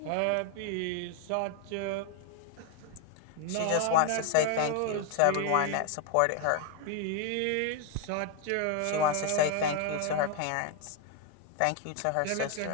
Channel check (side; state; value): both; different; correlation 0.01